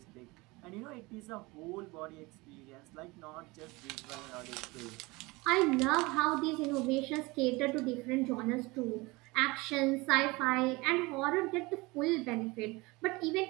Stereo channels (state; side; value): quieter; left; 23.6 dB